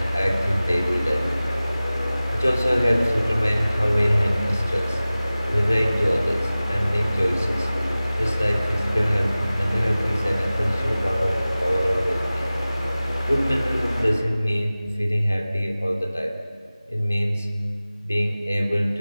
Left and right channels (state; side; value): inverted; both; correlation -0.97